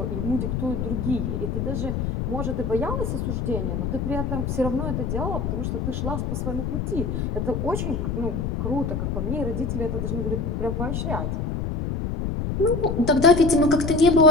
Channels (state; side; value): noise; left; rumble, 2 dB below the sound